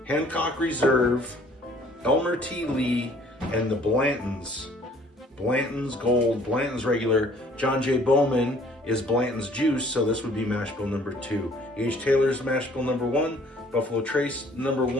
Hancock Reserve, Elmer T Lee, and the Blantons. Blanton's Gold, Blanton's Regular. John J. Bowman is Blanton's Juice, so this would be mash bill number 2. H. Taylor's mash bill number 1. Buffalo Trace number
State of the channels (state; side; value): normal; both; correlation 0.57